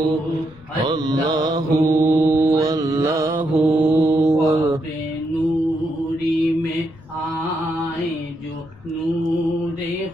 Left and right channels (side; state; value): left; noise; rumble, 23 dB below the sound